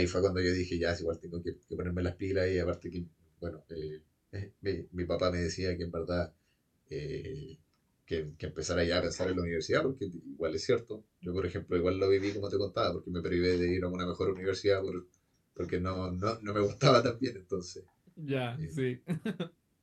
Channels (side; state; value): both; identical; correlation 1.00